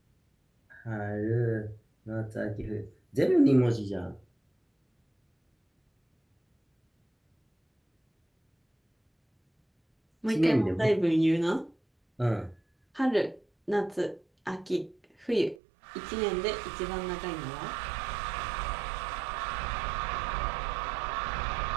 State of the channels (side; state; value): left; drops out; at 15.6 s